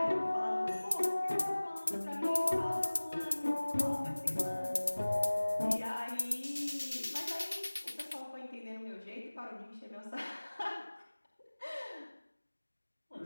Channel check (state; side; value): inverted; both; correlation -1.00